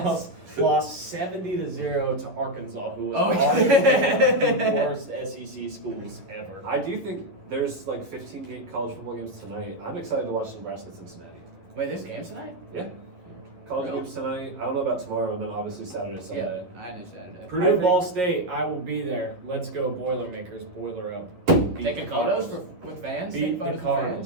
Bluff lost 70-0 to Arkansas, who was Oh, yeah. arguably the worst SEC schools ever. I do think there's like 15 college football games tonight. I'm excited to watch Nebraska Cincinnati. Wait, there's games tonight? Yeah. college No. games tonight. I don't know about tomorrow, and then obviously Saturday, Sunday. Yeah, I knew Saturday. Purdue Ball State, I will be there. Let's go Boilermakers, boiler up. Beat Taking the photos Cardinals. with fans? Beat Taking the photos with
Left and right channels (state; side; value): late; left; 11 ms